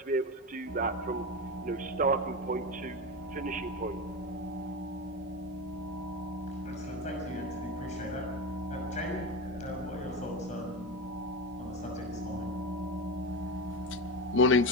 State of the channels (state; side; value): normal; both; correlation 0.20